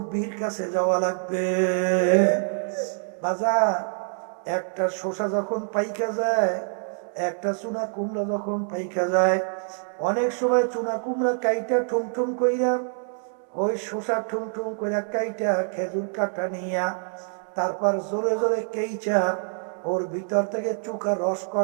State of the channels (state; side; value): silent; left; 61 dB below the other